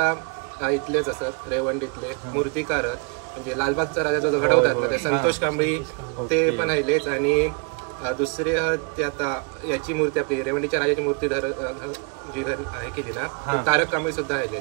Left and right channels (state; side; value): quieter; left; 34.7 dB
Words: इथलेच असत, रेवंडीतले मूर्तिकार म्हणजे लालबागचा राजा जो घडवतात ना ते संतोष कांबळी ते पण आहेलेच। आणि दुसरे ते आता याची मूर्ती आपली रेवंडीच्या राजाची मूर्ती जी आहे केली ना, तारक कांबळी सुद्धा